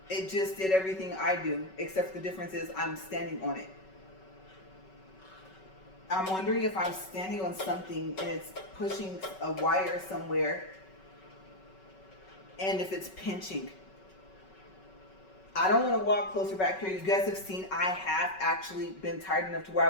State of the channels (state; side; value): late; right; 5.3 ms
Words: it just did everything I do, except the difference is I'm standing on it. I'm wondering if I'm standing on something and it's pushing a wire somewhere, and if it's pinching. I don't want to walk closer back here. You guys have seen I have actually been tired enough to where